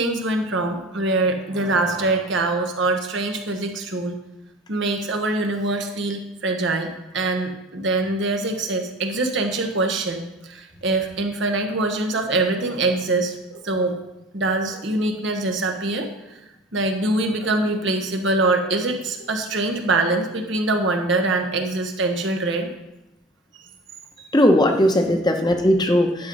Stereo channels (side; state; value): both; normal; correlation 0.41